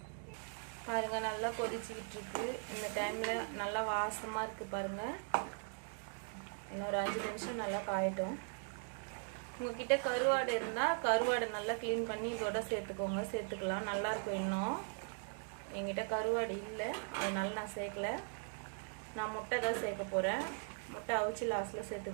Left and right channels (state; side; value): silent; left; 51 dB below the other